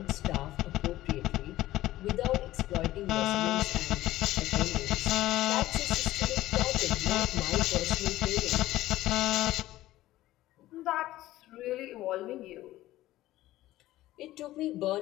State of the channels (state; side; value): quieter; right; 15.8 dB